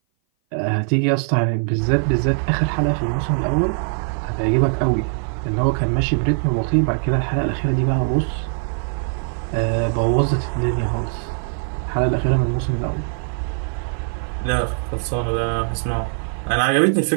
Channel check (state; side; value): silent; left; 57 dB below the other